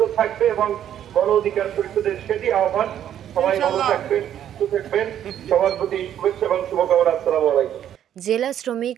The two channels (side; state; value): left; quieter; 10.4 dB